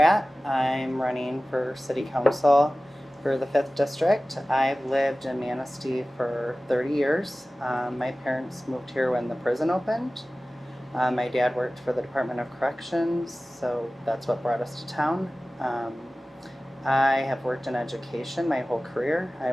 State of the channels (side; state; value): both; normal; correlation 0.97